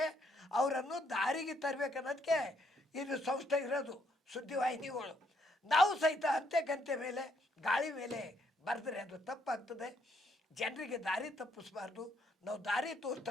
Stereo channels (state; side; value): normal; both; correlation 0.72